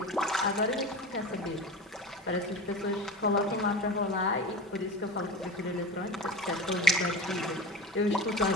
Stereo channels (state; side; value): normal; both; correlation 0.30